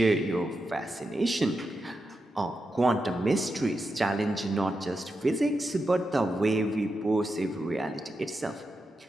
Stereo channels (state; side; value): normal; both; correlation 0.88